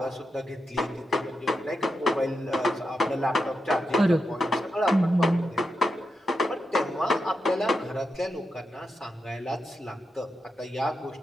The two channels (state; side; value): normal; both; correlation 0.87